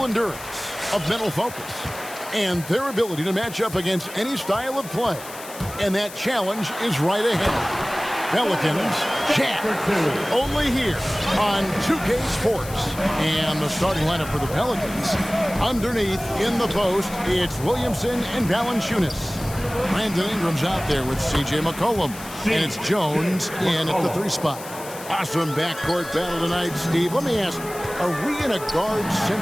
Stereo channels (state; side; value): noise; left; hiss, 14 dB below the sound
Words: endurance, of mental focus, and their ability to match up against any style of play. And that challenge is right ahead. Pelicans, Jazz, only here on 2K Sports. And the starting lineup for the Pelicans, underneath in the post, it's Williamson and Valanciunas. Brandon Ingram's out there with C.J. McCollum, and it's Jones in at the 3 spot. Awesome backcourt battle tonight, Steve. Let me ask, are we in a